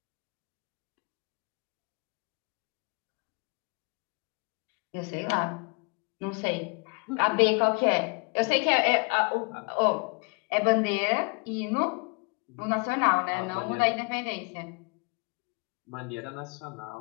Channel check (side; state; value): right; quieter; 33.4 dB